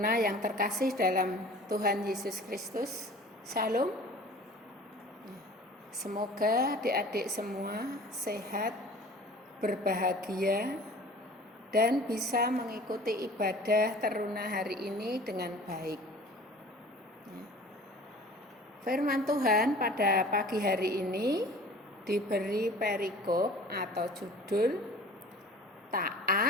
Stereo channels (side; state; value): both; normal; correlation 0.44